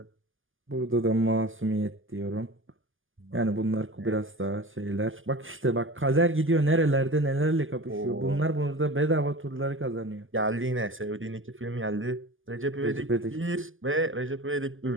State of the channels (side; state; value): left; late; 0.58 ms